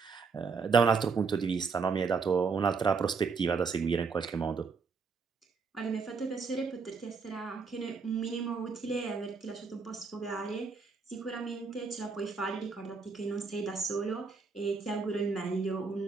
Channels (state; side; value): quieter; left; 5.1 dB